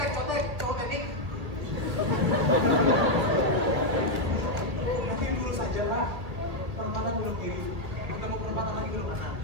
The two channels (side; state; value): left; late; 1.6 ms